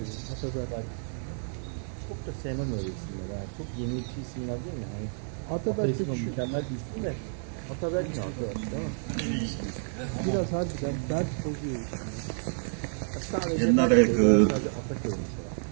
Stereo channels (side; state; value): left; silent; 58 dB below the other